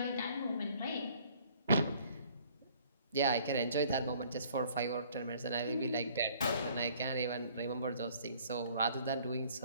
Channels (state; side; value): inverted; both; correlation -0.57